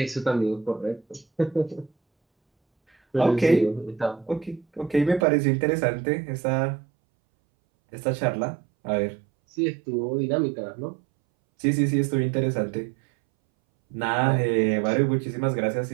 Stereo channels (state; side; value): drops out; left; at 5.2 s